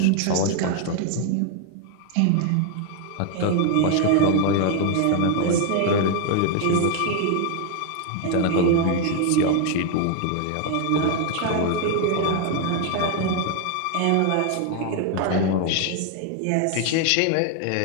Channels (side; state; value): both; different; correlation 0.01